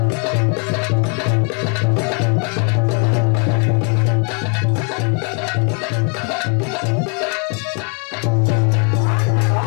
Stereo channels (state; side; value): quieter; right; 37.5 dB